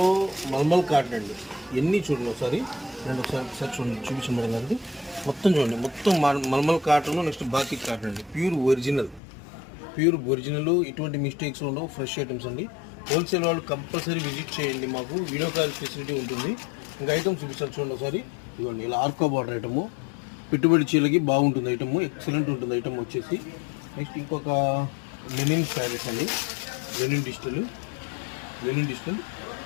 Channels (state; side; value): drops out; right; at 9.2 s